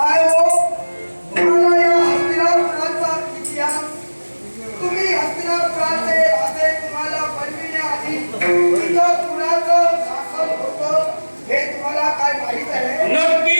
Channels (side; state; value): both; inverted; correlation -1.00